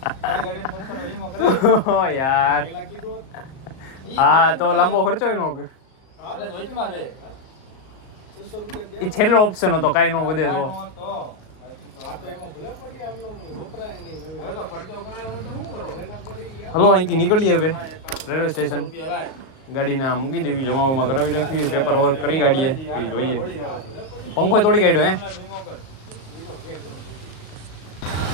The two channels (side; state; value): right; late; 37 ms